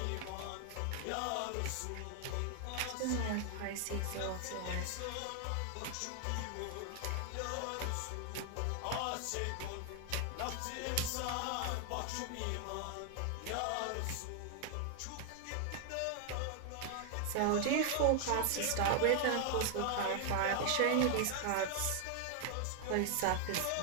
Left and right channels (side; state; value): both; different; correlation 0.00